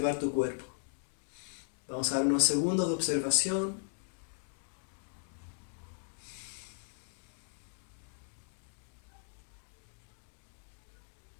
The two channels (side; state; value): right; silent; digital silence